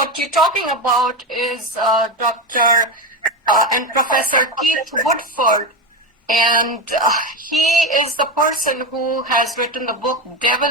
talking about is Dr. And Professor Keith Woodford, and he is the person who has written the book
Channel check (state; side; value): normal; both; correlation 0.16